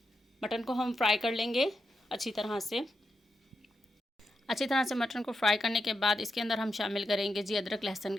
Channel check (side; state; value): both; normal; correlation 0.86